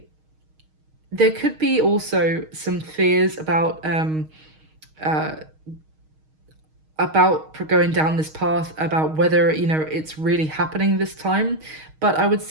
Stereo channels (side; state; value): left; late; 6.4 ms